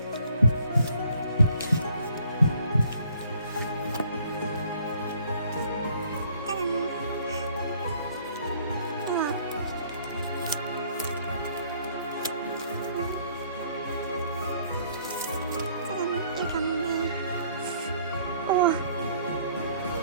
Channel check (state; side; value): inverted; both; correlation -0.60